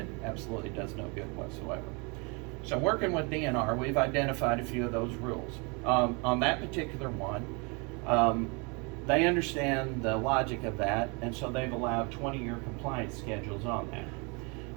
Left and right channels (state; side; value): quieter; left; 31.2 dB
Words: absolutely does no good whatsoever. So working with DNR, we've identified a few of those rules. On that particular one, they understand the logic of that, and so they've allowed 20-year compliance schedules on that.